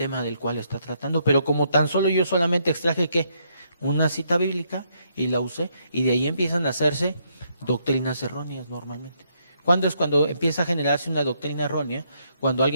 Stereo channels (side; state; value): both; inverted; correlation -0.74